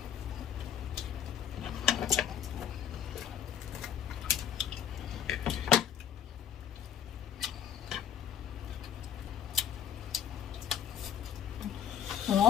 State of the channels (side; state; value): right; quieter; 9.1 dB